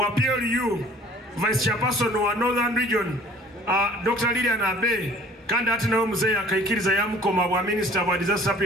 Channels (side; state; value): both; normal; correlation 0.51